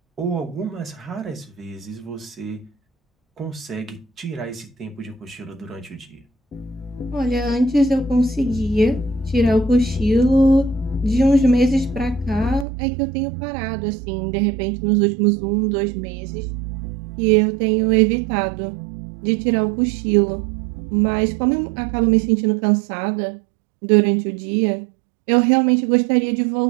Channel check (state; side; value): drops out; left; at 12.7 s